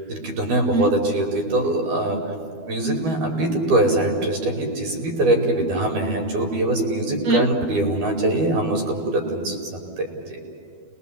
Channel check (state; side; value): late; left; 12 ms